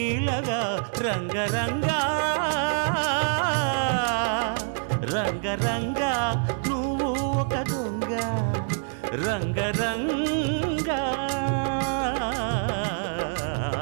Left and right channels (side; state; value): left; silent; 60 dB below the other